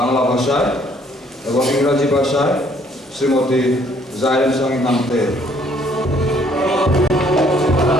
ভাষায় এবং ইংরাজি ভাষায় শ্রীমতী জাইরেন সামি নামতে।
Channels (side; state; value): both; normal; correlation 0.63